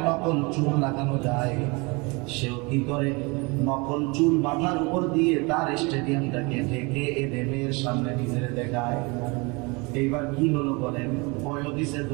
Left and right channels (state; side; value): quieter; left; 27.9 dB